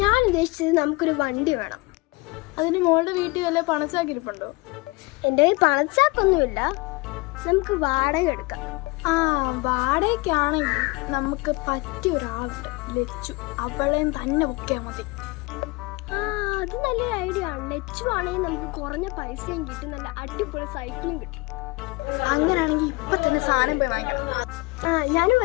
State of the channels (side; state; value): right; quieter; 25.2 dB